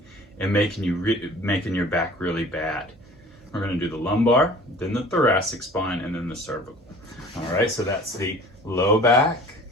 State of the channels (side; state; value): both; normal; correlation 0.46